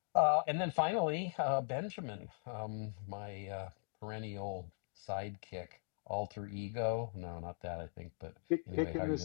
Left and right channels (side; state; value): right; silent; digital silence